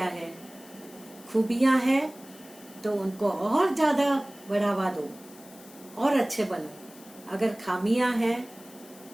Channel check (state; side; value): noise; left; hiss, 21 dB below the sound